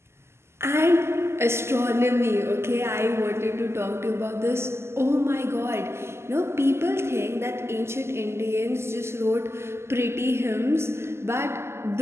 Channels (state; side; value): late; left; 0.12 ms